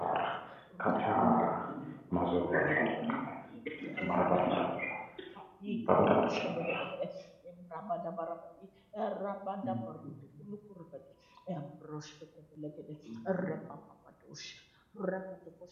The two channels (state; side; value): identical; both; correlation 1.00